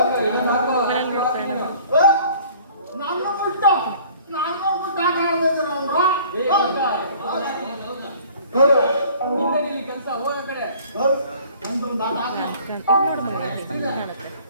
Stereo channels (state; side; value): inverted; both; correlation -0.52